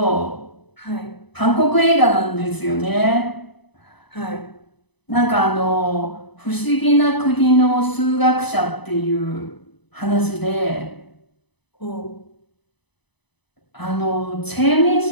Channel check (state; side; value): late; right; 0.99 ms